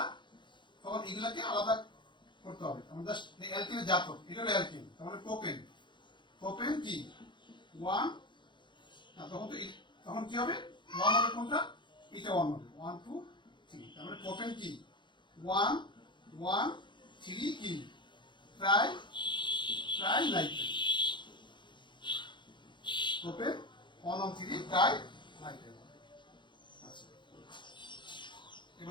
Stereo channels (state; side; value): late; right; 0.23 ms